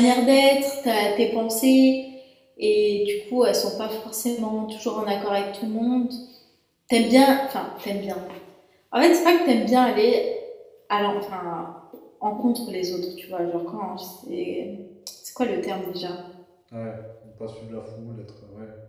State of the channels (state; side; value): identical; both; correlation 1.00